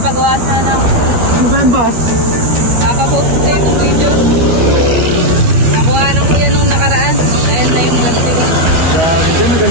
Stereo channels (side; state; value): left; late; 12 ms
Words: sana ako. Ano ba yung boss? Papapost ko yung video. Nakuha ng kuya nung nakaraan. Ayan na yung ganti ko. Grabe ka,